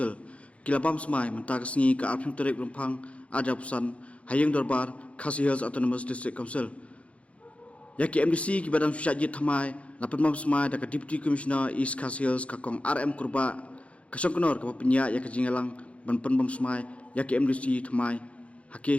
kilabam smai menta kasngi ka arphing terek rumphang ajapusan hayeng dorbar KHADC Hills Autonomous District Council ya ke MDC ki badam sujaji thymmai lapatmam smai da ka Deputy Commissioner East KHADC Hills ka kong RM kurba kasongkonor ka penya ya ka jingalang banpen bam smai ya ke MDC thymmai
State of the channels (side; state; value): right; late; 0.063 ms